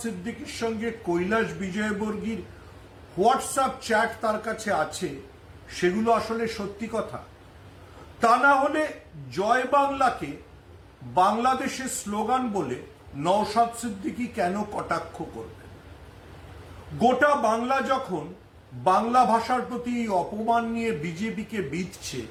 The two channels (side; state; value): both; identical; correlation 1.00